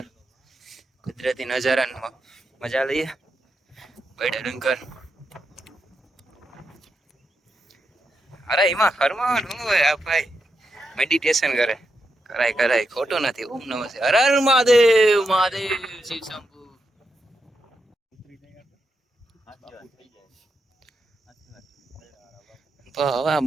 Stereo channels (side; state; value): both; normal; correlation 0.85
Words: કુદરતી નજારાની મજા લઈએ. બૈડા ડુંગર અરે એમાં ફરવાનું હોય આ ભાઈ મેડિટેશન કરે કરાય કરાય ખોટું નથી. ઓમ નમઃ શિવાય. હર હર મહાદેવ મહાદેવ શિવ શંભુ. તો હવે